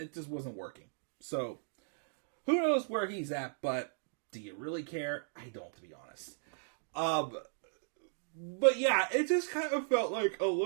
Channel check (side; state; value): left; silent; digital silence